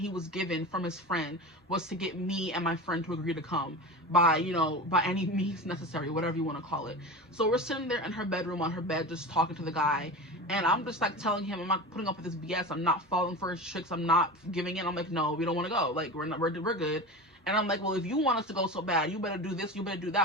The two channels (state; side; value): normal; both; correlation 0.29